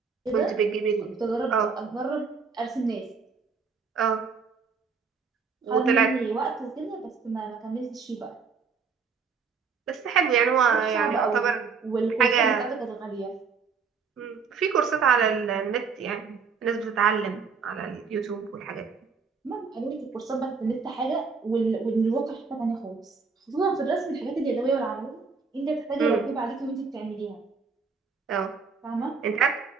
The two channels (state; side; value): quieter; left; 5.3 dB